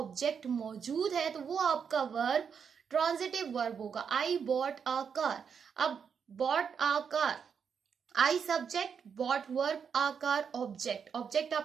मौजूद है तो वो आपका वर्ब ट्रांजिटिव वर्ब होगा। आई बॉट अ कार, अब bought a car, I subject, bought verb, a car object. Object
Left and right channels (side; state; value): left; quieter; 6.8 dB